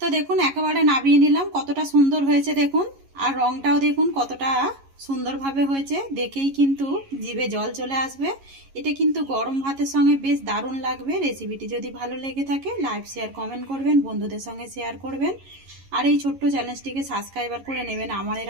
তো দেখুন একেবারে নামিয়ে নিলাম, কতটা সুন্দর হয়েছে দেখুন, আর রংটাও দেখুন কতটা সুন্দরভাবে হয়েছে, দেখেই কিন্তু জিভে জল চলে আসবে। এটা কিন্তু গরম ভাতের সঙ্গে বেশ দারুণ লাগবে। রেসিপিটি যদি ভালো লেগে থাকে লাইক শেয়ার কমেন্ট করবেন, বন্ধুদের সঙ্গে শেয়ার করবেন, আর এই ছোট্ট চ্যানেলটিকে সাবস্ক্রাইবার করে নেবেন আমার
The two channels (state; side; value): late; left; 11 ms